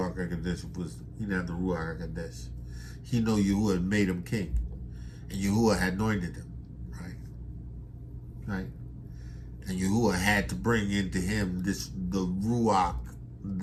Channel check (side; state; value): both; identical; correlation 1.00